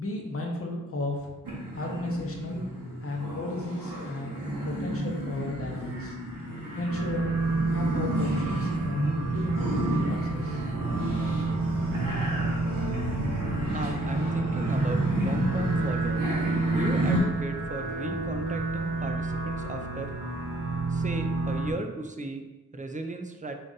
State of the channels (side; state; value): both; normal; correlation 0.64